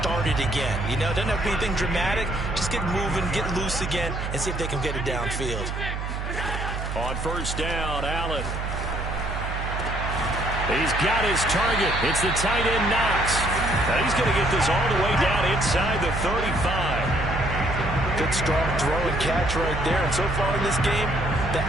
again. You know, doesn't have to be anything dramatic. Just get moving, get loose again, and see if they can get it downfield. On first down, Allen. He's got his target. It's the tight end, Knox. Now he's going to get this all the way down inside the 35. Good strong throw and catch right there. And so far in this game, the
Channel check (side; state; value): right; noise; hum, 4 dB below the sound